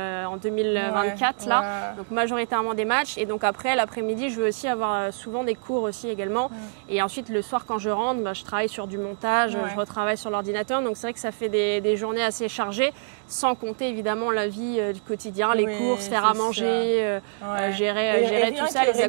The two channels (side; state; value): left; silent; digital silence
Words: 2024 là, donc majoritairement des matchs et donc après l'après-midi je veux aussi avoir souvent des cours aussi également et ensuite le soir quand je rentre je travaille sur du montage, je retravaille sur l'ordinateur donc c'est vrai que ça fait des journées assez chargées sans compter évidemment la vie du quotidien, les courses, faire à manger, gérer et rien tout ça, que